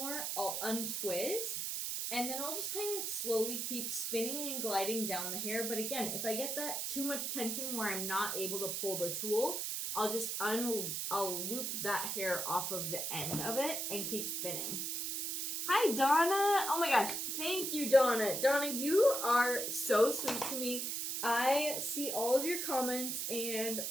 I'll untwist. And then I'll just kind of slowly keep spinning and gliding down the hair. But again, if I get that too much tension where I'm not able to pull the tool, I'll just I'll loop that hair off of the end of it and keep spinning. Hi, Donna. Oh my gosh. Thank you, Donna. Donna, you are so sweet to me. I see all of your comments and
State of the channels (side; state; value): right; noise; hiss, 2 dB below the sound